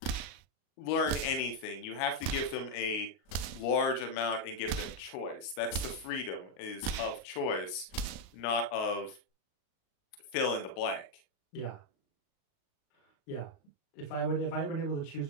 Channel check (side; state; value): right; late; 38 ms